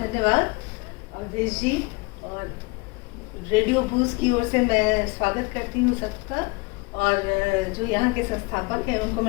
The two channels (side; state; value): right; quieter; 27.2 dB